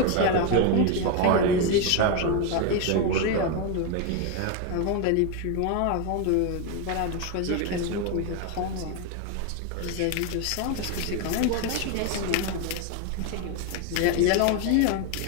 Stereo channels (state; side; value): different; both; correlation 0.02